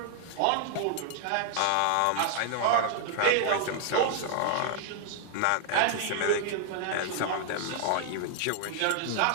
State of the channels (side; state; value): both; different; correlation 0.00